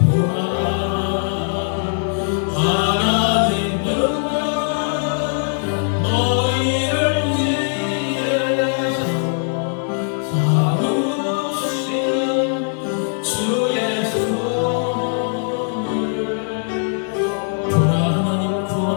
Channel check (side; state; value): right; silent; digital silence